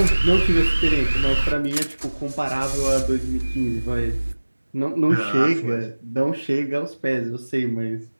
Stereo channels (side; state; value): both; inverted; correlation -1.00